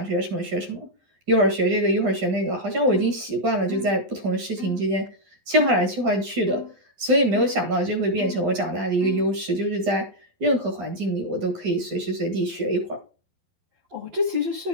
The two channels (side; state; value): left; late; 12 ms